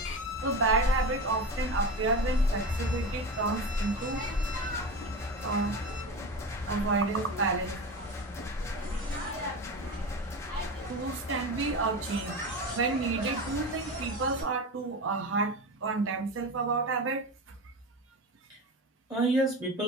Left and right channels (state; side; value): normal; both; correlation 0.25